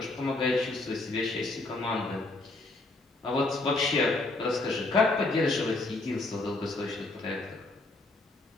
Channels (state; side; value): quieter; right; 3.0 dB